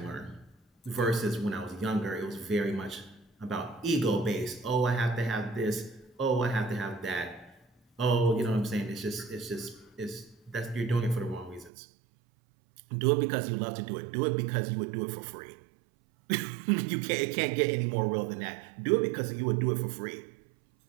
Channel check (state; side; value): drops out; left; at 11.7 s